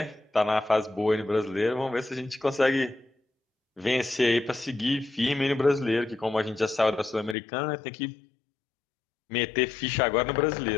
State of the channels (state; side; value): drops out; right; at 7.4 s